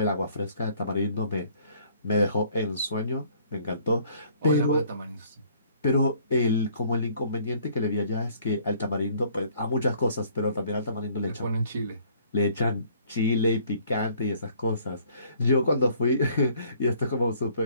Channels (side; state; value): both; inverted; correlation -0.59